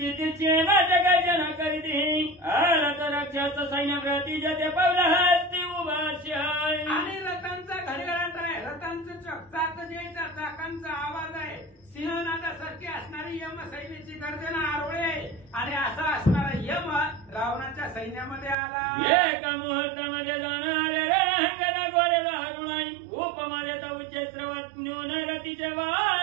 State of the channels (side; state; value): left; drops out; at 18.6 s